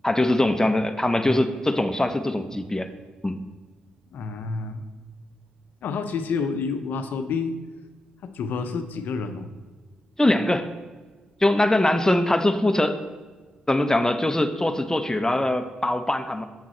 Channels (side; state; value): both; normal; correlation 0.91